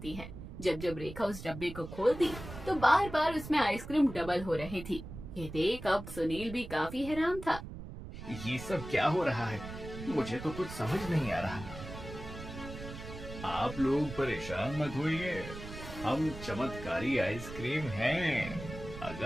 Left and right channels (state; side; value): noise; right; rumble, 11 dB below the sound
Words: है। जब जब रेखा उस डब्बे को खोलती तो बार बार उसमें आइसक्रीम डबल हो रही थी। ये देख अब सुनील भी काफी हैरान था। ये सब क्या हो रहा है? मुझे तो कुछ समझ नहीं आ रहा। आप लोग परेशान मत होइए, हम चमत्कारी आइसक्रीम हैं।